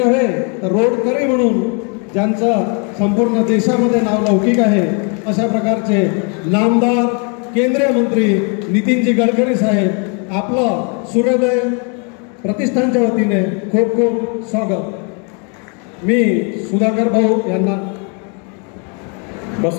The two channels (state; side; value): quieter; right; 36.7 dB